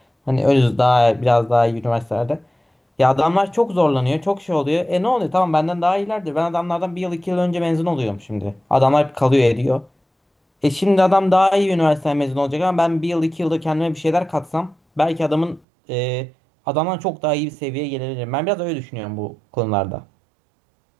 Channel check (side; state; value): left; drops out; at 15.6 s